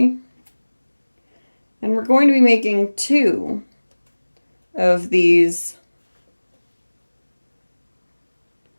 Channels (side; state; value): both; inverted; correlation -1.00